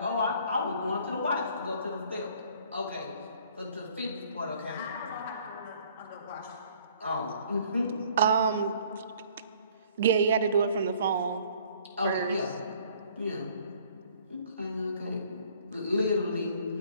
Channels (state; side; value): inverted; both; correlation -0.58